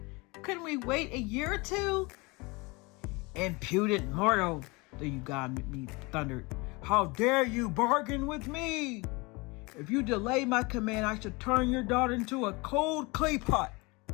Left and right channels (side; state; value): right; quieter; 26.0 dB